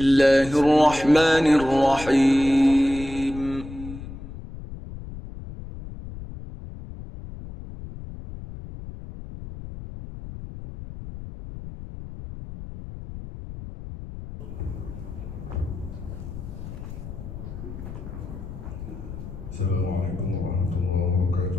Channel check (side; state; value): left; noise; rumble, 11 dB below the sound